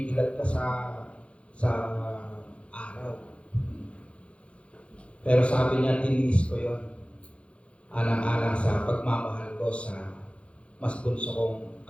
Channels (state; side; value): late; right; 0.061 ms